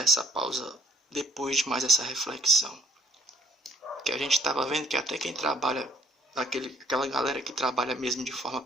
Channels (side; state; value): both; normal; correlation 0.62